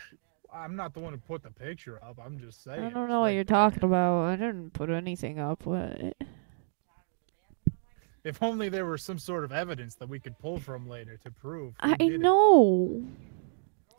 I'm not the one who put the picture up. I'm just saying. I don't know what you're talking about. I didn't put anything up. What? If only there were some sort of evidence that we could pull from later to prove. who I did it. know.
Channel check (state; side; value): silent; left; digital silence